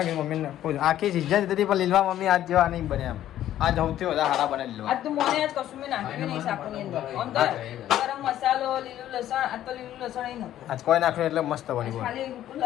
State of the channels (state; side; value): quieter; right; 12.3 dB